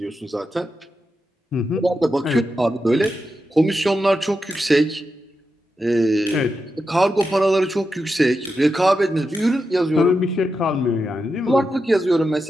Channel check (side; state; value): both; normal; correlation 0.88